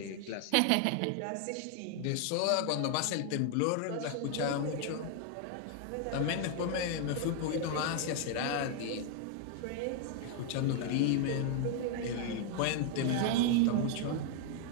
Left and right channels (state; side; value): different; both; correlation 0.00